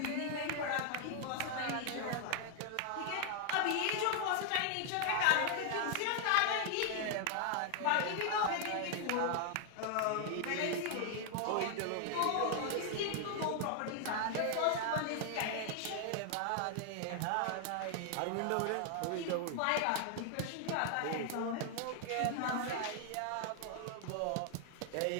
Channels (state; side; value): different; both; correlation 0.00